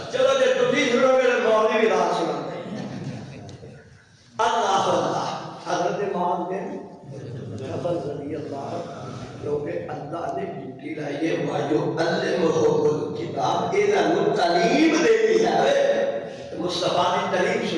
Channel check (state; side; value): identical; both; correlation 1.00